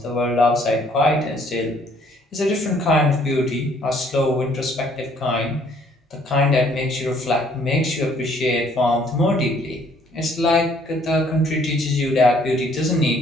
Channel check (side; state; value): both; normal; correlation 0.62